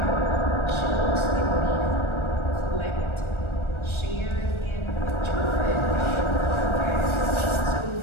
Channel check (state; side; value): late; right; 1.3 ms